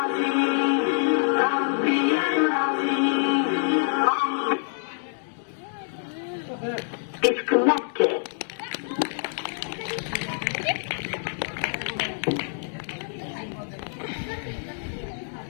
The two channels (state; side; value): silent; right; digital silence